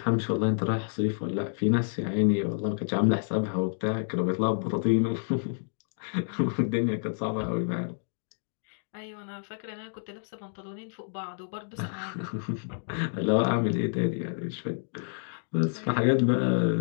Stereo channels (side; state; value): right; silent; digital silence